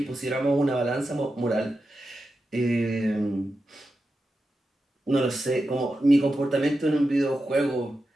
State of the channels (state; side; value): normal; both; correlation 0.90